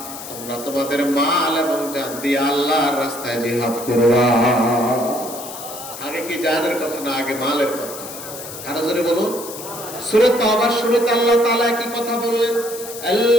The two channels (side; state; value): left; noise; hiss, 11 dB below the sound